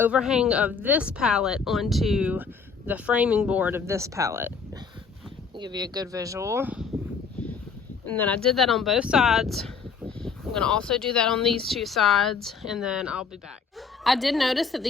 of this pallet onto the framing board of this pallet. I'll give you a good visual. And then I did that on both sides. I'm going to also do that on these 2 sides, and then I'll be back. I did notice that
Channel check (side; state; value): right; quieter; 5.6 dB